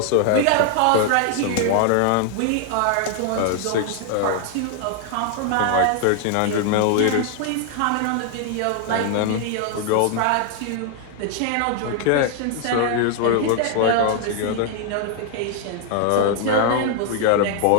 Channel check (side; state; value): both; different; correlation 0.00